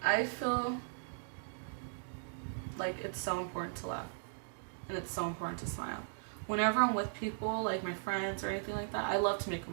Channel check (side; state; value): left; silent; digital silence